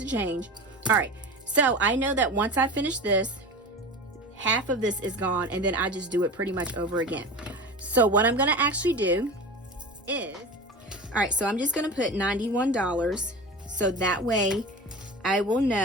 change. All right, so I know that once I finish this, half of this is gone, and then I just do it pretty much over again. So what I'm gonna actually do is, all right, so I'm just gonna put $91, so that way I will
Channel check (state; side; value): normal; both; correlation 0.31